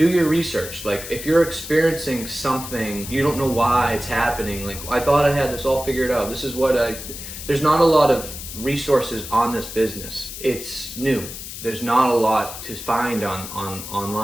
your research. Like if you're experiencing something, you don't know why it's happening. Like I thought I had this all figured out. This is what there's not a lot of resources on this business. It's new. There's not a lot to find on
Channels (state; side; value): noise; left; hiss, 10 dB below the sound